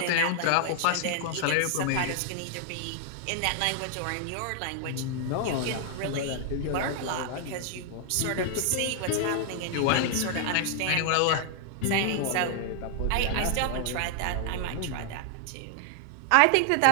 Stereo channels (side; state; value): both; different; correlation 0.00